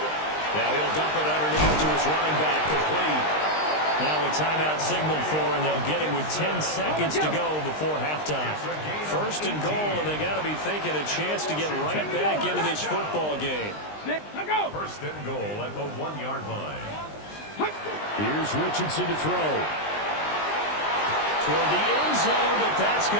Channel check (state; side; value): late; right; 20 ms